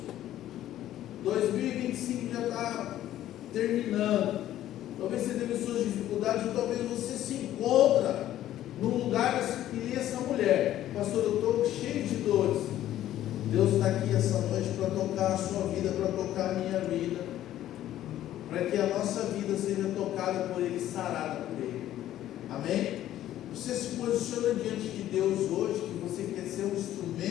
2025 já está terminando. Talvez você teve suas dificuldades, ou talvez você se encontra num lugar que nem essa mulher. Pastor, eu estou cheio de dores. Deus está aqui essa noite para tocar a sua vida, para tocar a minha vida, para que a nossa vida seja tocada por Ele, sarada por Ele. Amém? Você se posiciona diante de Deus hoje, que você quer ser um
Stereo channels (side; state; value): right; quieter; 12.8 dB